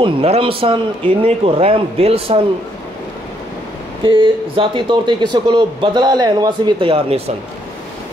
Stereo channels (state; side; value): normal; both; correlation 0.72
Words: नरम सन, इन्ने को रहम दिल सन कि ज़ाती तौर ते किसी को बदला लैन वास्ते भी तैयार नहीं सन।